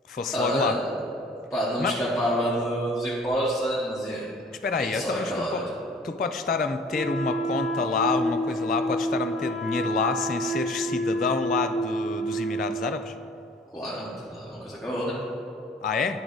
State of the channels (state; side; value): normal; both; correlation 0.51